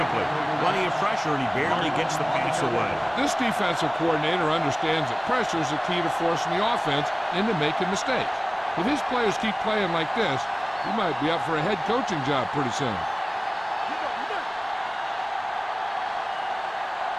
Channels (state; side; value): identical; both; correlation 1.00